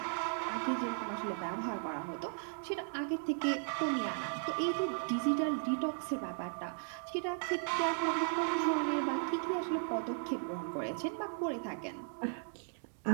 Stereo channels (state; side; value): silent; left; 54 dB below the other